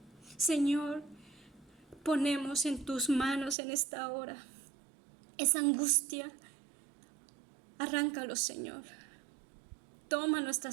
Señor, ponemos en tus manos en esta hora esa angustia. Arráncalo, Señor. Toma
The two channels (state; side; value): drops out; left; at 3.6 s